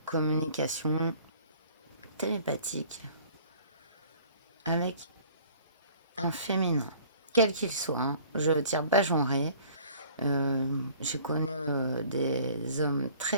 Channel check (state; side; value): inverted; both; correlation -0.52